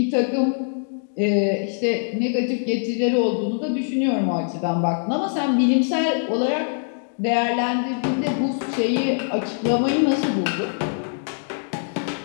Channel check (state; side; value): silent; right; digital silence